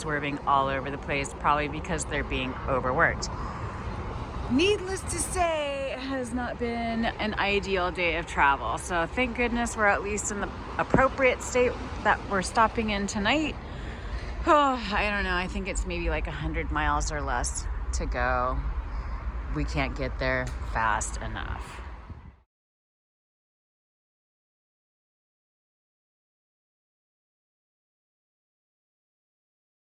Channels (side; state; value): both; identical; correlation 1.00